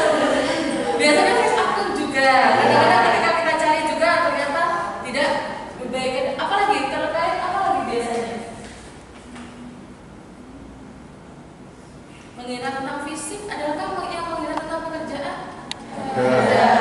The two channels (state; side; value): identical; both; correlation 1.00